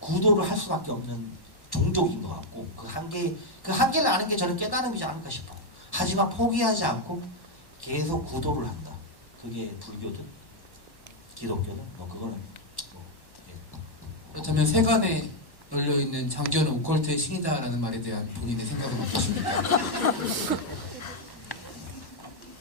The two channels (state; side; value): late; right; 1.1 ms